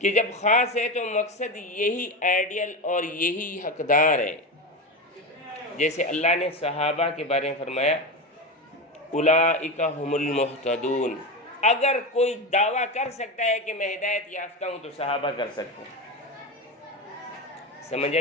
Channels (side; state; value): both; normal; correlation 0.20